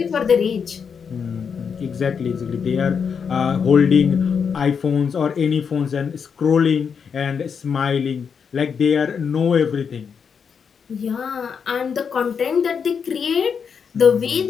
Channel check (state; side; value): quieter; right; 6.5 dB